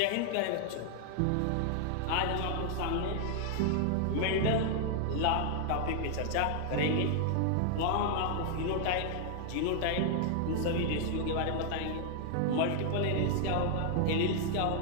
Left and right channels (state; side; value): different; both; correlation 0.00